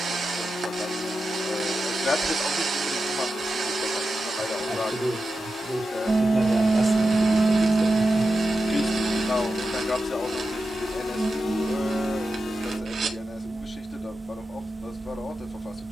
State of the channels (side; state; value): both; normal; correlation 0.91